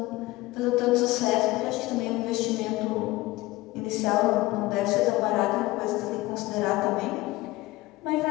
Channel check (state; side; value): quieter; right; 19.5 dB